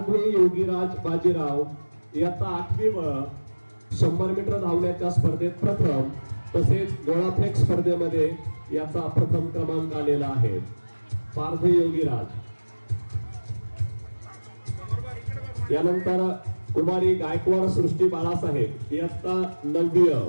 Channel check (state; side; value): inverted; both; correlation -1.00